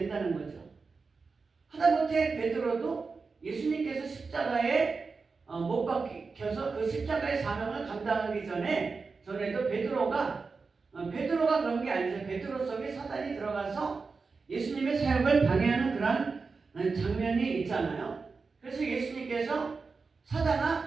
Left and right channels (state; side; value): quieter; left; 4.5 dB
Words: 거죠. 하다못해 베드로도 예수님께서 십자가에 못 박혀서 그 십자가의 사명을 감당하기 전에도 베드로가 그런 게 아니죠. 베드로 속에 사단이 들어가서 예수님의 사역을 방해하는 그런 장면이 있잖아요. 그래서 예수님께서